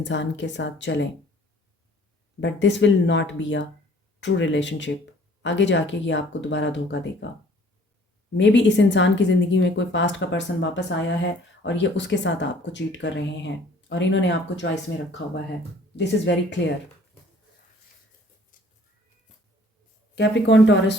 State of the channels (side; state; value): both; normal; correlation 0.55